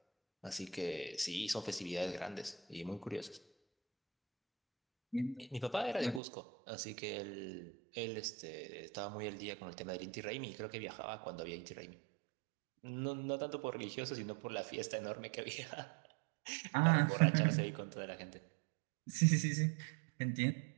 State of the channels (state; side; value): drops out; left; at 6.2 s